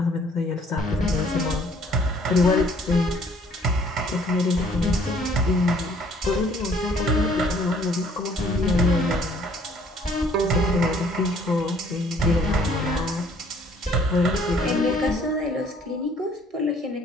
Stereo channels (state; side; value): normal; both; correlation 0.60